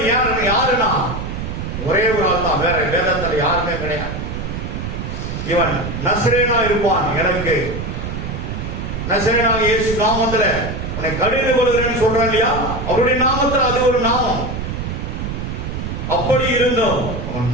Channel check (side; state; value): right; noise; rumble, 5 dB below the sound